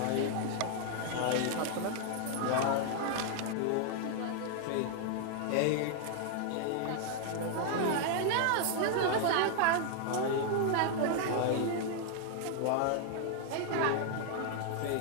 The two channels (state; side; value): different; both; correlation 0.00